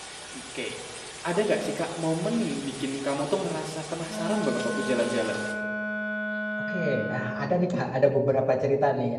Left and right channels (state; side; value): identical; both; correlation 1.00